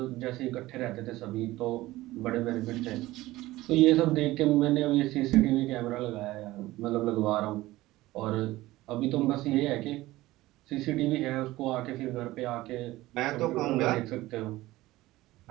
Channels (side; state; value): left; quieter; 17.7 dB